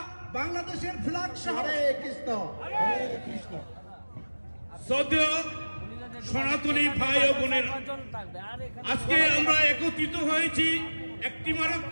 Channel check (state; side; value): inverted; both; correlation -1.00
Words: বাংলাদেশের ফ্ল্যাগ সহ শ্রদ্ধেয় সনাতনী ভাই ও বোনেরা, আজকে আমরা একত্রিত হয়েছি